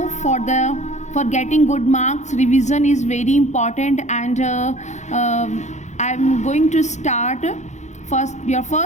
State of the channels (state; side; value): late; right; 0.34 ms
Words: for getting good marks, revision is very important, and I'm going to start your